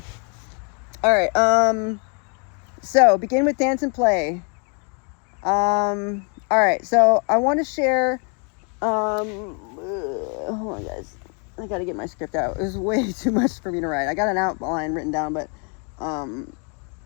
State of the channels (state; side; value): quieter; right; 37.7 dB